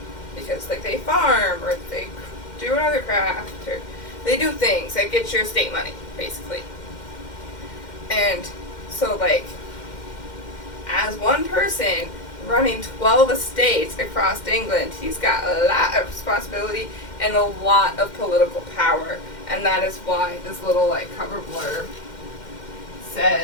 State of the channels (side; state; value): right; late; 2.1 ms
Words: because, like, they farm, or they do another craft, or they do things that get your estate money, basically. And so, like, as one person running 12 estates across England, he's got a lot of responsibility and a lot of political power. And that is why this little, like, cover blurb